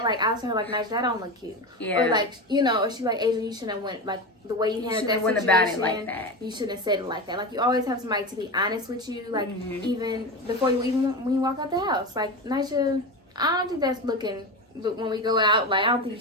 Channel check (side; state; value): both; normal; correlation 0.22